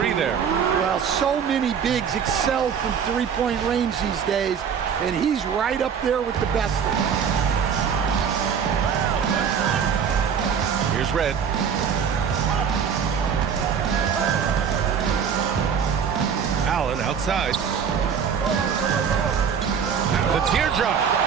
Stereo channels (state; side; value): quieter; left; 7.2 dB